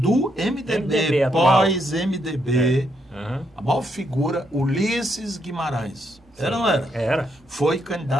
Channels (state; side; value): normal; both; correlation 0.77